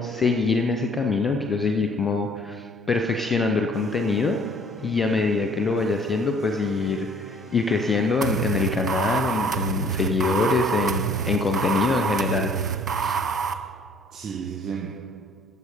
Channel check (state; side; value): normal; both; correlation 0.58